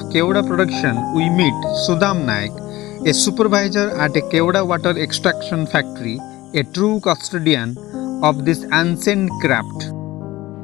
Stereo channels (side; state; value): right; quieter; 18.0 dB